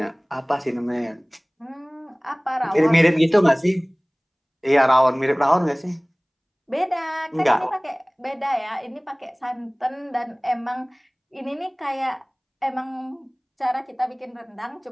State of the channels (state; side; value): identical; both; correlation 1.00